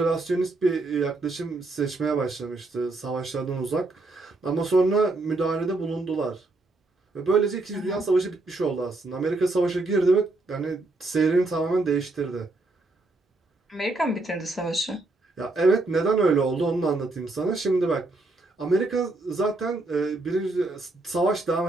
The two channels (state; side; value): quieter; left; 3.1 dB